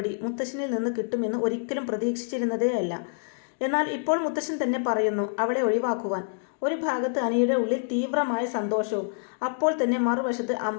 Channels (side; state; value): right; silent; digital silence